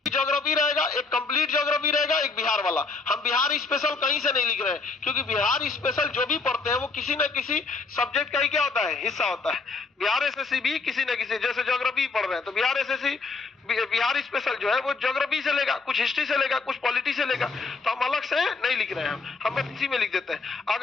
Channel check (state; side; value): quieter; right; 4.2 dB